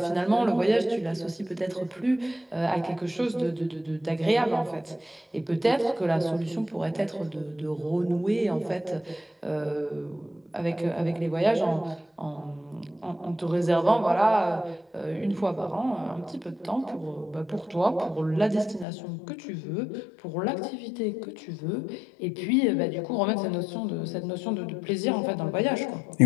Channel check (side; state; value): right; drops out; at 18.9 s